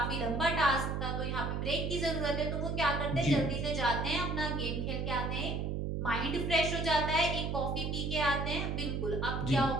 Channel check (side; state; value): right; noise; hum, 1 dB below the sound